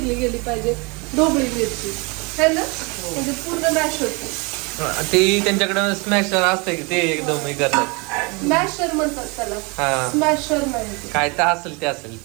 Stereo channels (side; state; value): left; quieter; 29.5 dB